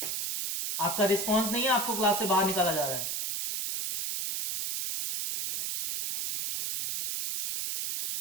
आपका रिस्पॉन्स नहीं है, आपको क्लास से बाहर निकाला जा रहा है।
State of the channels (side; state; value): right; noise; hiss, 2 dB below the sound